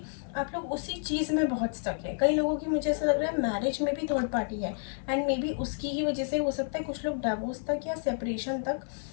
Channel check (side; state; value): right; silent; 55 dB below the other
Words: आप लोग उसी चीज़ में बहुत स्टक है। कई लोगों की मुझे ऐसा लग रहा है मैरिज में भी 3rd पार्टी है, एंड मे बी उसकी ही वजह से हो सकता है कुछ लोग डिवोर्स तक या सेपरेशन तक